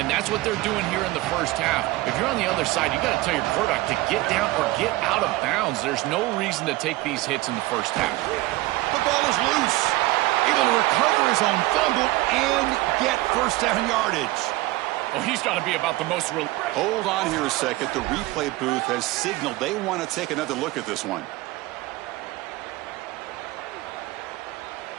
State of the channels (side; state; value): left; quieter; 19.1 dB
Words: that's what they're doing here in the 1st half. If you're on the other side, you got to tell your quarterback to get down or get out of bounds. There's no reason to take these hits in the 1st half. The ball is loose. Able to recover his own fumble and get 1st down yardage. Well, he's got to be about the most... Hold on here a second. The replay booth has signaled they want to take another look at this one.